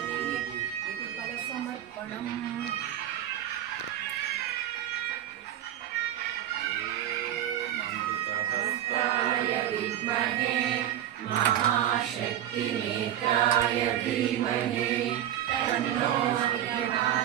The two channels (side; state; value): left; quieter; 11.6 dB